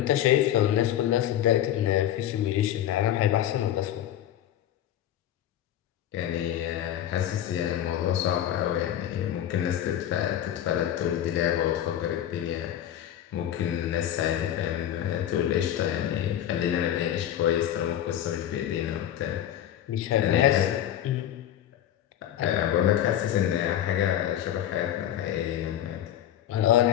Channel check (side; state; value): right; quieter; 11.4 dB